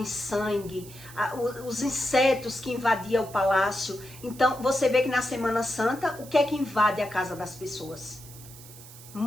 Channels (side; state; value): right; noise; hiss, 18 dB below the sound